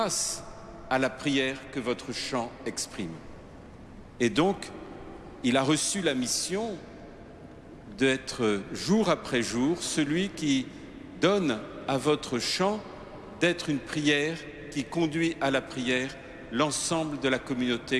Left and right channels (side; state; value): both; identical; correlation 1.00